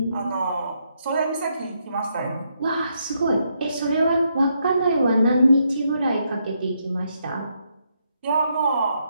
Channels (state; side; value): inverted; both; correlation -0.78